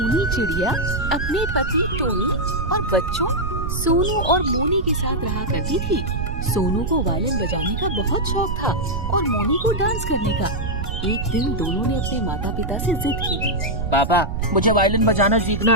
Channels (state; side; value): noise; right; rumble, 3 dB below the sound